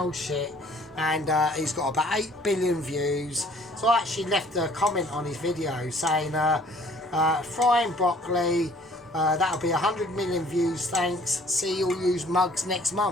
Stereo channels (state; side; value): normal; both; correlation 0.55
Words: shit. And he's got about 8 billion views. So I actually left a comment on his video saying, frying broccoli, that'll be 100 million views, thanks. See you'll use mugs next